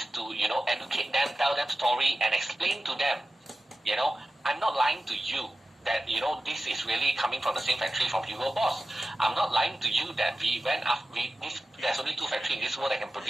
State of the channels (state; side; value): normal; both; correlation 0.94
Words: to, educate them, tell them story, and explain to them, I'm not lying to you that, this is really coming from the same factory from Hugo Boss. I'm not lying to you that we went after, there's only 2 factories in this world that can